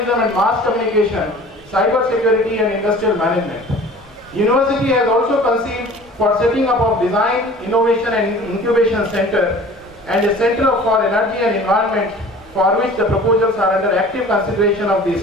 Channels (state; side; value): normal; both; correlation 0.45